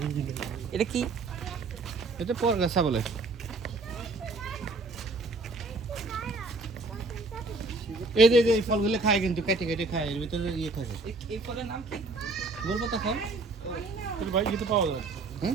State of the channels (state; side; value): quieter; left; 3.5 dB